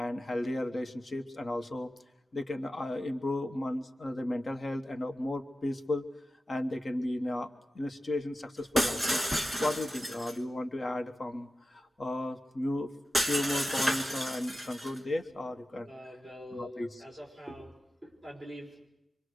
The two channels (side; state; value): both; normal; correlation 0.93